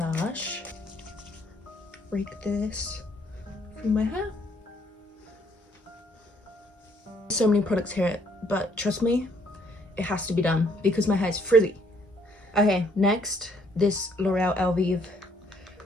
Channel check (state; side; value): normal; both; correlation 0.66